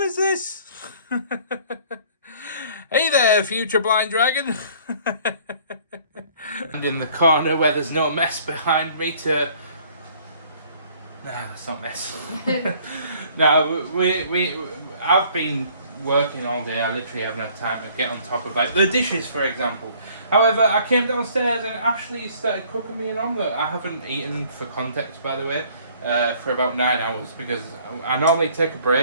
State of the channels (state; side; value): inverted; both; correlation -0.56